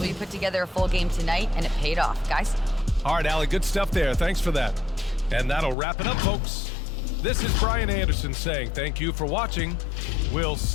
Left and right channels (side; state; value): right; drops out; at 5.8 s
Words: you put together a full game tonight, and it paid off, guys. All right, Allie, good stuff there. Thanks for that. And that'll wrap it up, folks. This is Brian Anderson saying thank you for watching. We'll